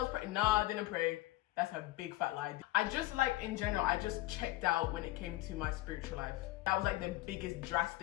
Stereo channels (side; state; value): right; quieter; 17.7 dB